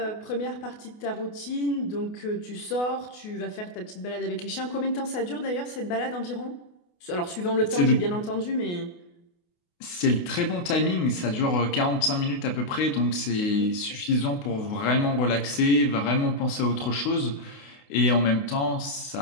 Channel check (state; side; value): late; right; 28 ms